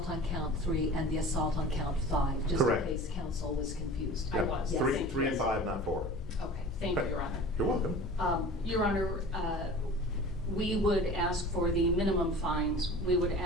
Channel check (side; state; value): both; normal; correlation 0.39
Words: on count 3 and the assault on count 5, just Correct. in case counsel was confused. I was. Yes. Three and 5, not 4. Okay, thank you, Your Honor. You're welcome. Your Honor, we would ask for the minimum fines. We would